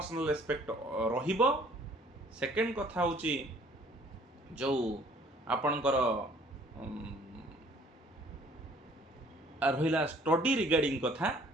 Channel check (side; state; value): both; normal; correlation 0.57